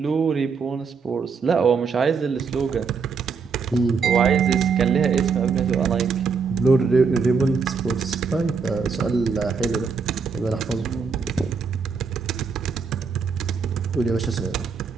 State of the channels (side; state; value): left; quieter; 5.4 dB